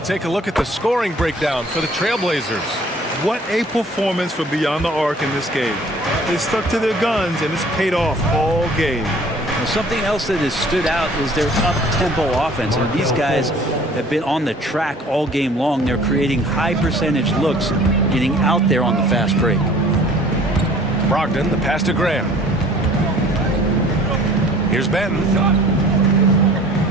a look at the scoring breakdown for the Trailblazers. What a performance from beyond the arc in this game. They stuck to their guns, and it's paid off all game. Well, something else that has stood out is their up-tempo offense. And these guys have been on the track all game long. They're creating high-percentage looks, getting out there on the fast break. Brogdon, the pass to Grant. Here's Benton.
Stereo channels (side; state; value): both; normal; correlation 0.52